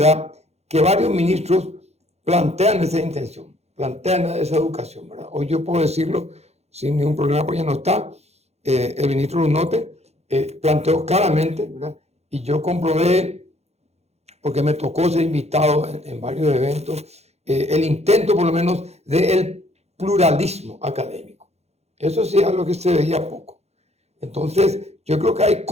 que varios ministros plantean esa intención, plantean esa educación, ¿verdad? Hoy yo puedo decirlo sin ningún problema, pues ya no está. El ministro Lunote planteó claramente, ¿verdad? Y yo comprobé, porque me tocó ser invitado en varios eventos, el intento por lo menos del pluralismo académico. Eso sí es algo que se veía poco. Entonces, yo creo que hay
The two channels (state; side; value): late; left; 0.31 ms